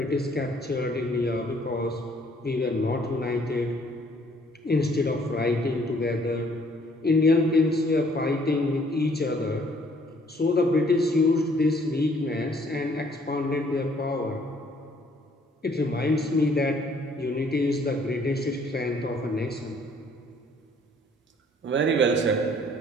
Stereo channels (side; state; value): both; normal; correlation 0.62